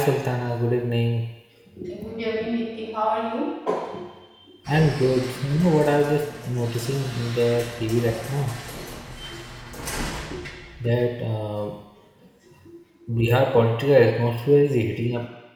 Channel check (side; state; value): both; identical; correlation 1.00